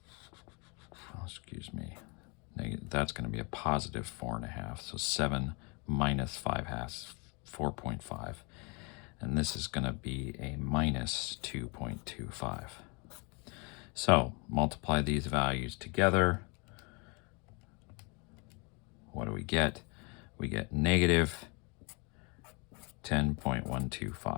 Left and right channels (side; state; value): right; quieter; 31.7 dB